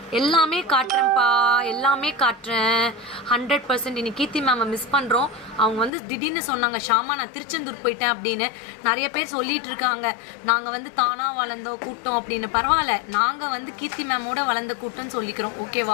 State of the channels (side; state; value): right; drops out; at 5.9 s